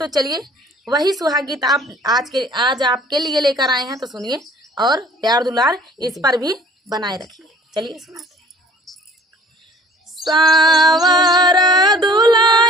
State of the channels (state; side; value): normal; both; correlation 0.52